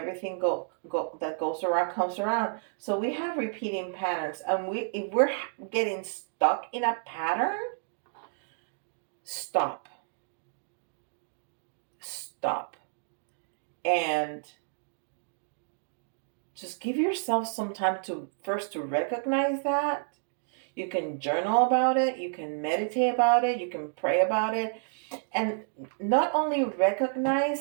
that goes around comes around. So we have repeating patterns, and if we're getting stuck in a pattern, stop. And just give yourself some time to recognize that. You can journal about it, you can meditate about it, you can pray about it, and not only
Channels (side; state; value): left; silent; digital silence